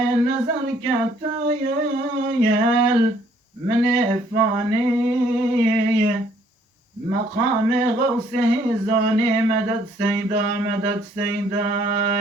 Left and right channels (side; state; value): both; normal; correlation 0.64